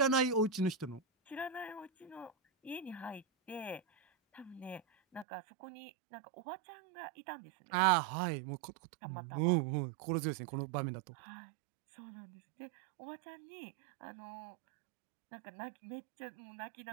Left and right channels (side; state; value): left; drops out; at 5.2 s